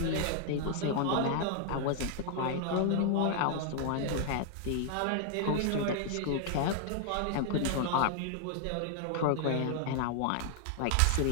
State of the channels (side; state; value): both; different; correlation 0.00